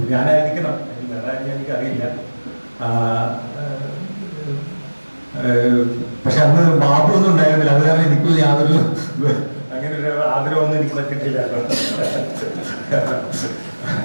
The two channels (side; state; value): both; inverted; correlation -1.00